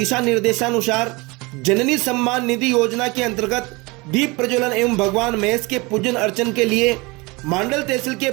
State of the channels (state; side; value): quieter; left; 25.1 dB